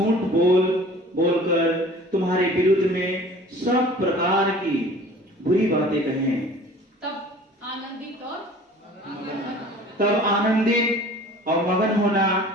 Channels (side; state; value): both; normal; correlation 0.46